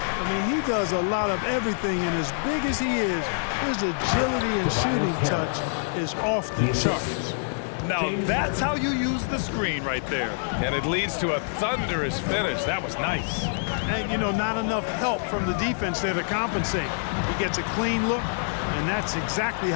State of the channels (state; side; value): silent; right; 61 dB below the other